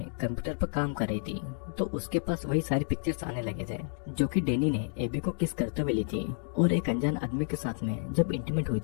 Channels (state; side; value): silent; right; digital silence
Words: कंप्यूटर पर काम कर रही थी तो उसके पास वही सारी पिक्चर्स आने लगे थे जो कि डैनी ने एबी को किस करते हुए ली थी और एक अनजान आदमी के साथ में जब इंटीमेट हुई